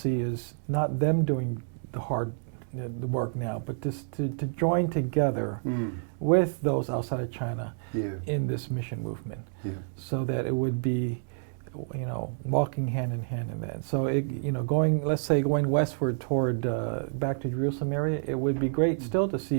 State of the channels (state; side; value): silent; left; digital silence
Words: is not them doing the work now, but just to join together with those outside of China in this mission movement, so that it would be, walking hand in hand in that. So going westward toward back to Jerusalem area, it would be great still to